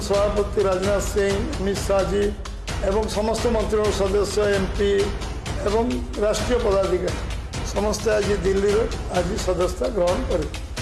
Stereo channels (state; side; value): identical; both; correlation 1.00